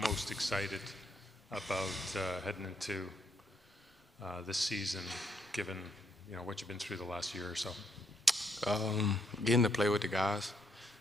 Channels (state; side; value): normal; both; correlation 0.74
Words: excited about heading into this season, given what you've been through the last year or so? Getting to play with the guys,